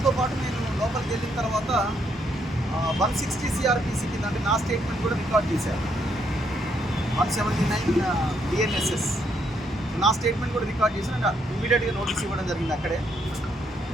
నేను లోపలికి వెళ్ళిన తర్వాత 160 సిఆర్పిసి కింద అంటే నా స్టేట్మెంట్ కూడా రికార్డ్ చేశారు. 179 బిఎన్ఎస్ఎస్ నా స్టేట్మెంట్ కూడా రికార్డ్ చేసి అంటే ఇమీడియట్గా నోటీస్ ఇవ్వడం జరిగింది అక్కడే.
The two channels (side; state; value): both; normal; correlation 0.74